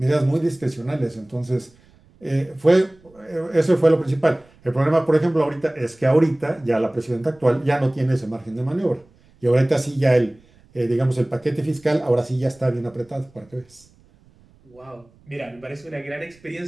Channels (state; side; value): noise; right; rumble, 30 dB below the sound